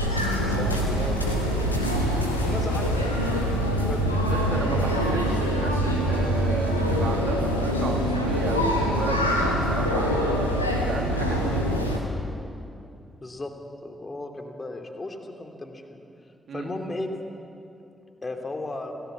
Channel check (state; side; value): normal; both; correlation 0.40